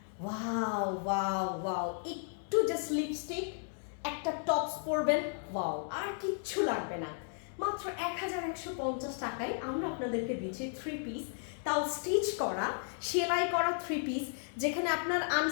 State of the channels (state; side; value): silent; right; 55 dB below the other